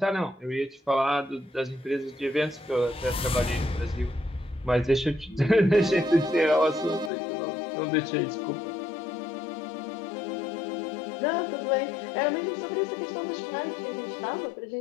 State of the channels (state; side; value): drops out; right; at 7.1 s